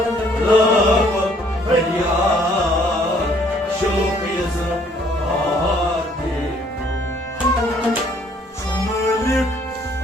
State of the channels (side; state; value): both; normal; correlation 0.62